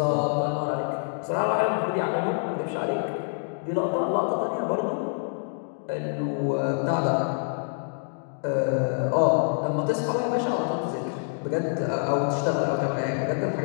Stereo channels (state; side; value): silent; right; 61 dB below the other